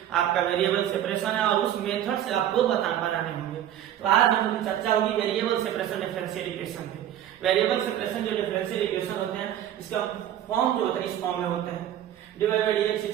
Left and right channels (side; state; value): left; quieter; 11.3 dB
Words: आपका वेरिएबल सेपरेशन है, और उस मेथड से आपको बनाने होंगे। तो आज हम लोग चर्चा होगी वेरिएबल सेपरेशन डिफरेंशियल इक्वेशन पे। वेरिएबल सेपरेशन जो डिफरेंशियल इक्वेशन होते हैं, इसका फॉर्म जो होता है इस फॉर्म में होते हैं dy by dx